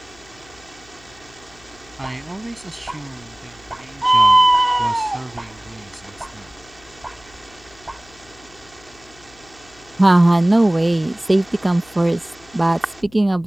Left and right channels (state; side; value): noise; left; hum, 26 dB below the sound